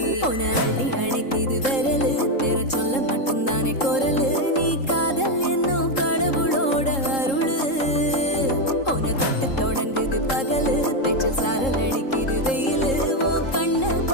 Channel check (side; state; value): right; late; 3.7 ms